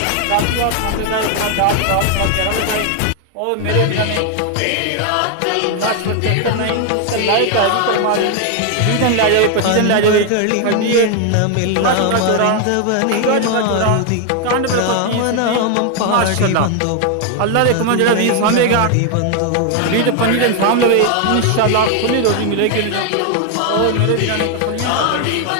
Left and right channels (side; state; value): both; different; correlation 0.01